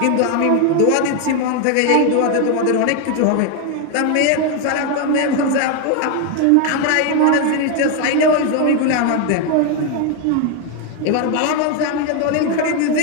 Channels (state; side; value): different; both; correlation 0.01